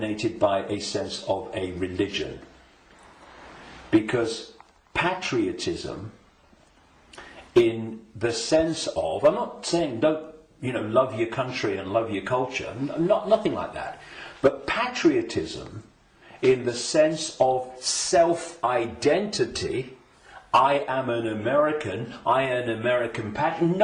by a sense of a religion. Because patriotism, in the sense of, I'm not saying don't, love your country and love your culture, nothing like that. But patriotism, in the sense of self-identity, I am an American, I am an American patriot.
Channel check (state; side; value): identical; both; correlation 1.00